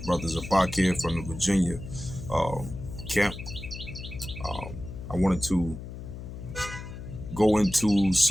Brother Zabak here from the Virginia camp. I wanted to go into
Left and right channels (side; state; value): left; noise; hum, 10 dB below the sound